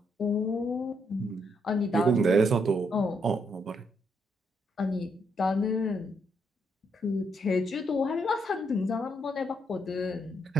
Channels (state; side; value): normal; both; correlation 0.76